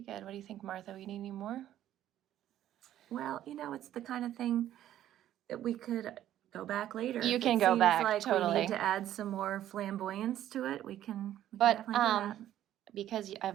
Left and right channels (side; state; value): left; quieter; 12.2 dB